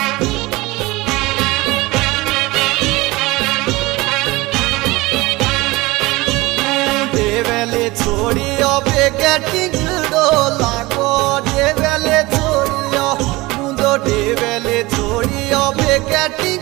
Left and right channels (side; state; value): left; quieter; 21.4 dB